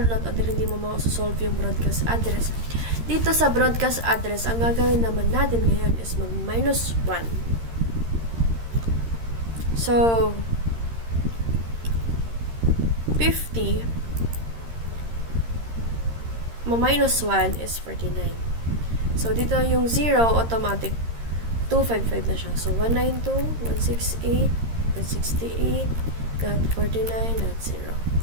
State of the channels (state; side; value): late; left; 13 ms